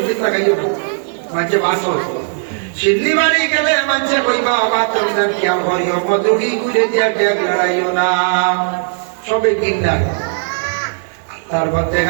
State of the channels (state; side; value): silent; left; 69 dB below the other